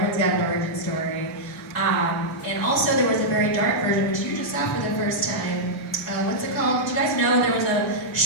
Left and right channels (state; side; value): normal; both; correlation -0.07